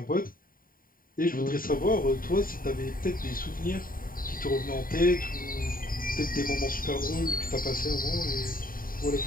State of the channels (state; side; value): late; right; 0.41 ms